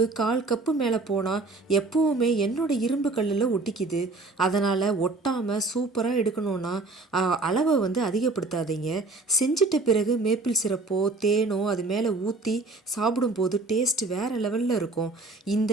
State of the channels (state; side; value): quieter; left; 3.4 dB